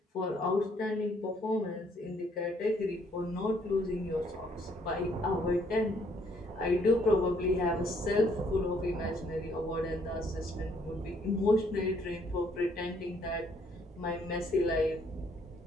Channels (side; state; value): both; normal; correlation 0.66